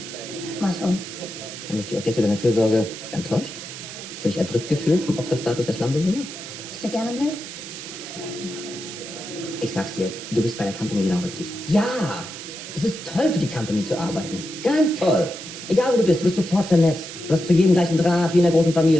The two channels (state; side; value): noise; right; hiss, 11 dB below the sound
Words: Was und? Haben dich die Objekte deiner Fürsorge enttäuscht? Hast du dich erdrückt gefühlt vom Opferstatus der Slumbewohner? Bist du gerne blöd? Ich sag's dir, du bist bei der Company genau richtig. Ja! Es ist toll, für die Company zu arbeiten. Ganz toll. Egal, wo du bist sofort vernetzt. Du hast zu jedem gleichen Draht, wie in einer großen